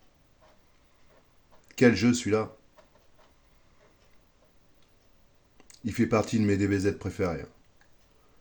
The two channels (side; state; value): both; identical; correlation 1.00